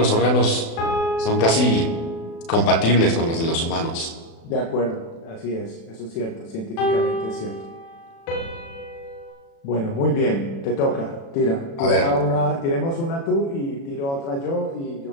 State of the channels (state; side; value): late; right; 36 ms